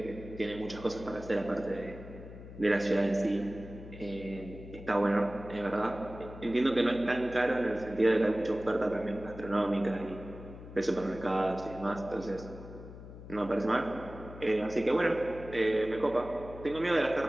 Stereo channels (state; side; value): noise; left; hum, 14 dB below the sound